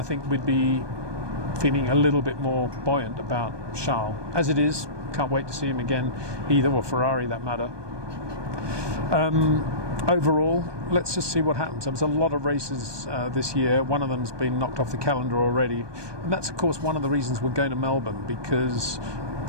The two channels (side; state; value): left; late; 1.2 ms